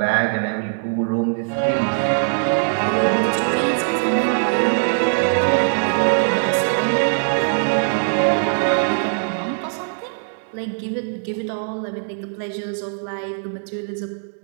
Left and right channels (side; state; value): left; silent; digital silence